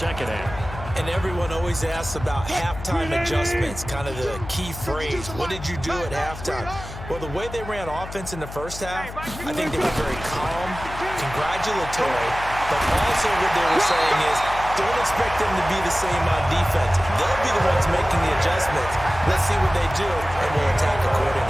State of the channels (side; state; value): left; noise; hum, 11 dB below the sound